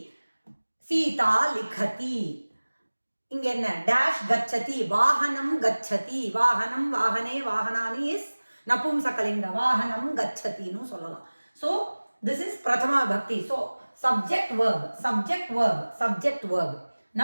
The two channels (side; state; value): both; inverted; correlation -1.00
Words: Sita likhati. இங்க என்ன dash gachati, vahanam gachati, vahanam, vahane, vahanani is napumsakalinga, vahanam gachati nu சொல்லலாம். So this is Prathama Vibhakti. So subject verb, subject verb, subject verb.